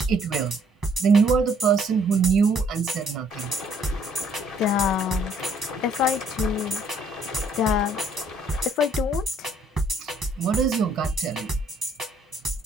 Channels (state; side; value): normal; both; correlation 0.64